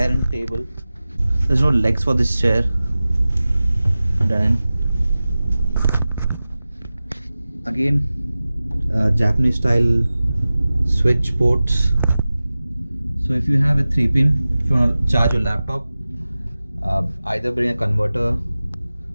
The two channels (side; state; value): both; inverted; correlation -0.96